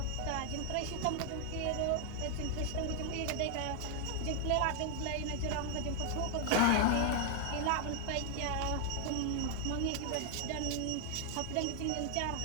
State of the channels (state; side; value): different; both; correlation 0.00